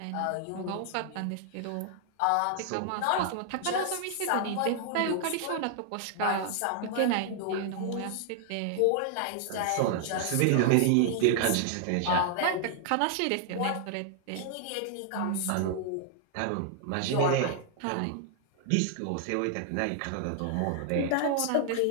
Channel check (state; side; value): different; both; correlation 0.00